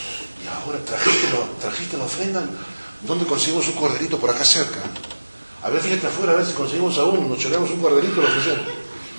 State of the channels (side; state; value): both; inverted; correlation -1.00